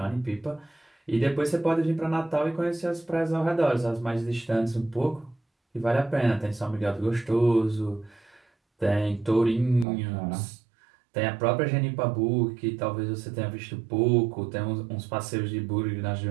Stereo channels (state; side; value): drops out; left; at 9.9 s